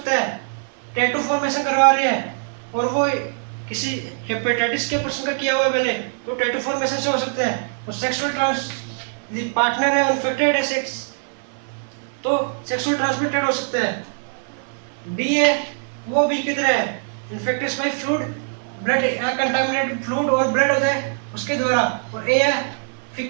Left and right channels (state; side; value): silent; left; 55 dB below the other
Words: है। टैटू फॉर्मेशन करवा रहे हैं और वो किसी हेपेटाइटिस के पर्सन का किया हुआ है पहले, तो टैटू फॉर्मेशन से हो सकता है। और सेक्सुअल पार्टनर है इन्फेक्टेड है सेक्स, तो सेक्सुअल ट्रांसमिटेड हो सकता है। बी है वो बी की तरह है, infected by fluid, blood contaminated fluid और ब्लड होता है उसके द्वारा। और ए है